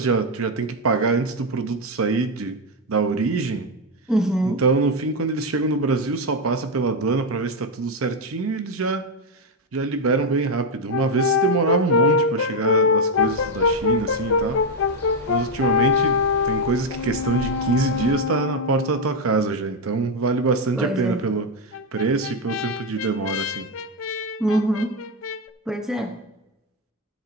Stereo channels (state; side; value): normal; both; correlation 0.06